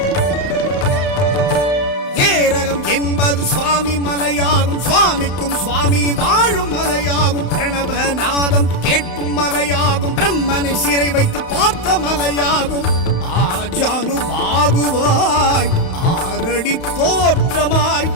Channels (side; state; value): right; late; 31 ms